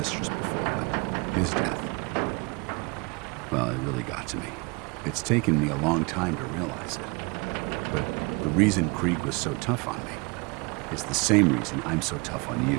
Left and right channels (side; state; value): left; quieter; 28.6 dB